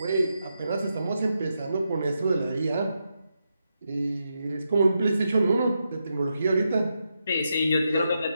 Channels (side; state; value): both; inverted; correlation -0.85